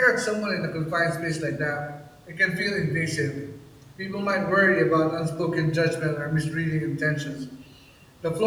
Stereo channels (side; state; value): both; identical; correlation 1.00